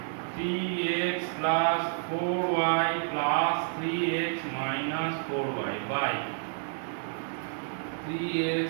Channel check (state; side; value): silent; left; digital silence